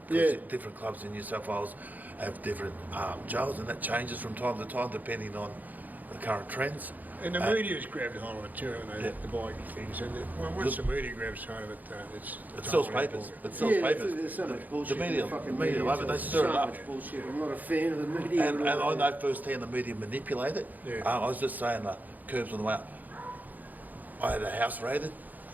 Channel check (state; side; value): late; left; 0.082 ms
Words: Different clubs in New South Wales have different jails, and that changes from time to time depending on the current trends. And the media's grabbed hold of it too, haven't they? Yeah. The biking things. And once the media grabs hold of it, It sells papers. It sells papers. There's so much bullshit. The media, fucking love it. They stir so it up. much bullshit. I'm not a fan of the media. And I know firsthand the media manipulate it. Yeah. I was just saying the Curbs on the way out. I had a house raided.